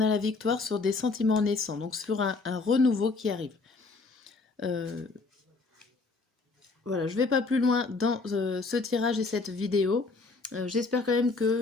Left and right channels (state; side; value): quieter; right; 3.9 dB